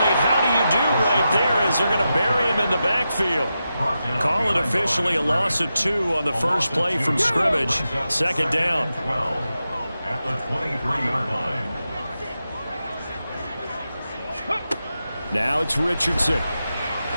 how do you do right there as they're going to bury him in the backfield. Call it officially a loss of 2 on the first play from scrimmage. Second down. At the 23-yard line. Now it's Richardson.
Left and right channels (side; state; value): both; inverted; correlation -0.89